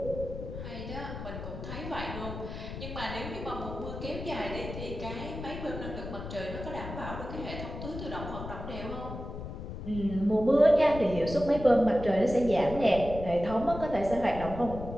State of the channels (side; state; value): left; noise; rumble, 9 dB below the sound